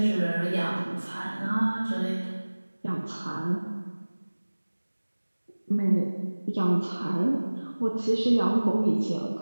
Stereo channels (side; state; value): both; inverted; correlation -1.00